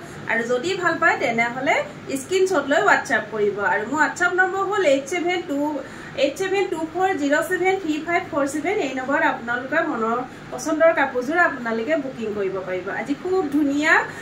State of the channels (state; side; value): identical; both; correlation 1.00